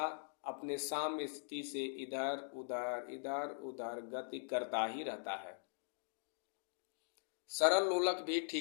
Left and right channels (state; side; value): silent; right; digital silence